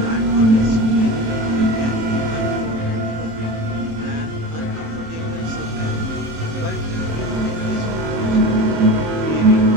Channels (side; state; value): left; late; 27 ms